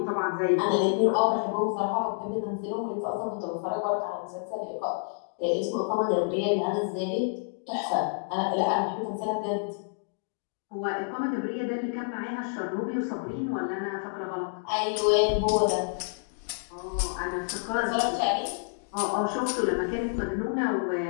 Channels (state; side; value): silent; right; digital silence